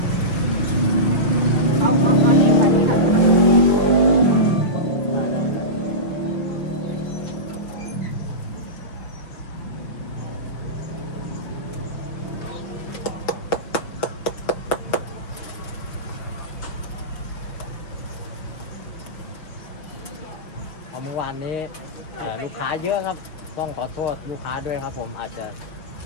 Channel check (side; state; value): right; late; 6.0 ms